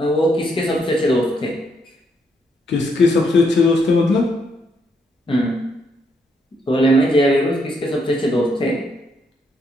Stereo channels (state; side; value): normal; both; correlation 0.75